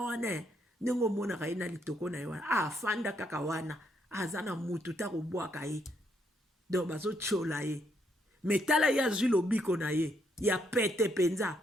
wana ndenge mona ka ina litoko na wana fanda kaka wana azana mutu ta robwaka ye. Donc bazo tiola ye. Metala ya zilo biko na ye ya pete penza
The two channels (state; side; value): normal; both; correlation 0.74